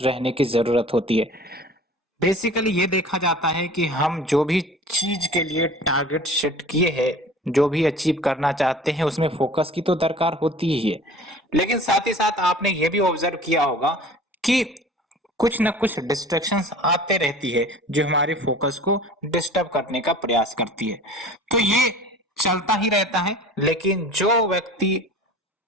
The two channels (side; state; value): both; normal; correlation 0.43